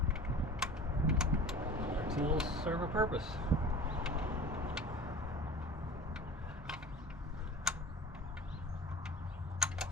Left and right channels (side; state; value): both; normal; correlation 0.39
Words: Our tools serve a purpose.